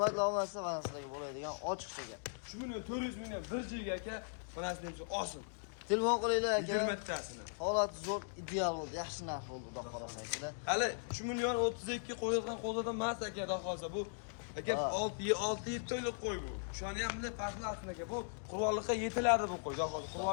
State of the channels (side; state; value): right; silent; digital silence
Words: obunachilar, mana sizlarga bo'ladigan ochiqcha gap. 3 million 400 mingdan bir joyga aka, mana shunday olsin. Telefon qilinglar aka. 20 tasini. Holat zo'r, ideal bo'ldi, yaxshi narx bo'ldi, xudo xolasa akalar. Hali 3 million 32 qo'yilgan qo'zidan emas aka, xudo xolasa bu aka 6-7 oylik qo'y bu. Shuni ham bunday farqli aslida aka. Bu qurollikqa yetiladi bu qo'y. Xudo xolasa